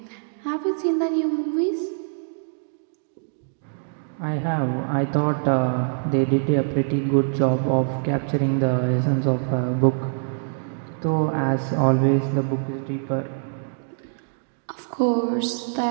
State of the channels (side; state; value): left; silent; digital silence